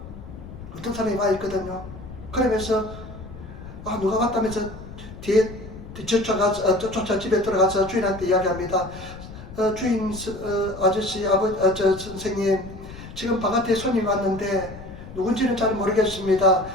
어떤 사람이 와 있거든요. 그러면서 누가 왔다면서 뒤에 쫓아 집에 들어가서 주인한테 이야기합니다. 주인 아저씨 선생님 지금 바깥에 손님 왔는데 누군지는 잘 모르겠습니다.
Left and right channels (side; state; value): left; noise; rumble, 14 dB below the sound